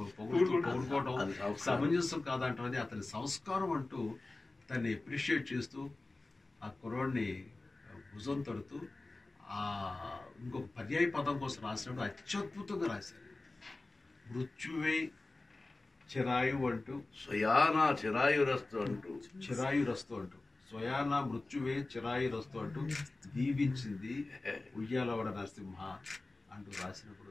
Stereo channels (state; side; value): quieter; right; 3.1 dB